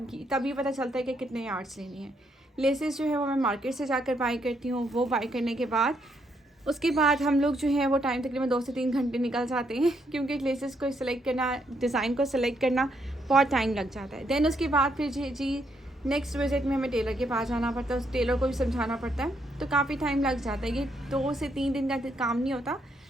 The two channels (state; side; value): normal; both; correlation 0.75